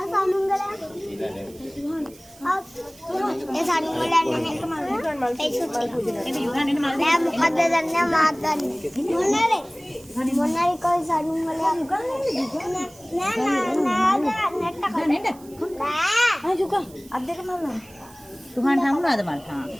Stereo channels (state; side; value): noise; right; hiss, 24 dB below the sound